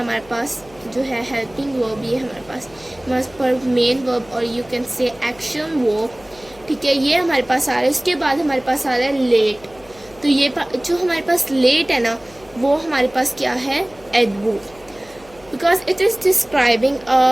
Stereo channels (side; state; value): left; noise; hum, 25 dB below the sound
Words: पास जो है हेल्पिंग वर्ब, ये हमारे पास मेन वर्ब, और you can say action verb, ठीक है। ये हमारे पास आ रहा है। उसके बाद हमारे पास आ रहा है लेट। तो ये जो हमारे पास लेट है ना, वो हमारे पास क्या है, adverb, because it is describing